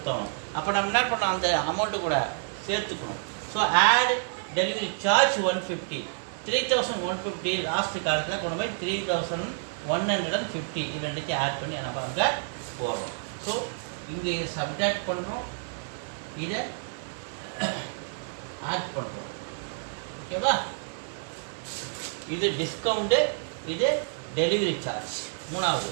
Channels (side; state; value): left; silent; digital silence